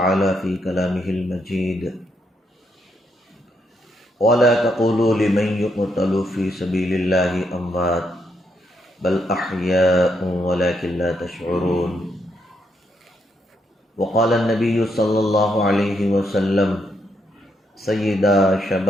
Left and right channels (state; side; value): normal; both; correlation 0.77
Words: فی کلامہ المجید ولا تقولوا لمن يقتل في سبيل الله اموات بل احیاء ولكن لا تشعرون وقال النبی صلی اللہ علیہ وسلم سیدا